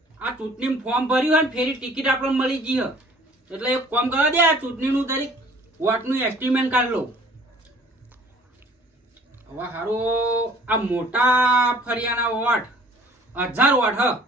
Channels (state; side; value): normal; both; correlation 0.53